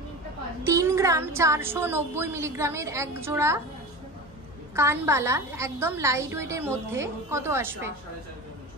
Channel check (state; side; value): normal; both; correlation 0.29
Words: 3 গ্রাম 490 মিলিগ্রামের এক জোড়া কানবালা একদম লাইট ওয়েটের মধ্যে কত আসবে?